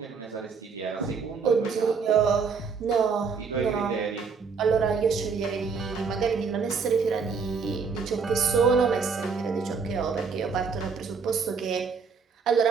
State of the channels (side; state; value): left; quieter; 5.4 dB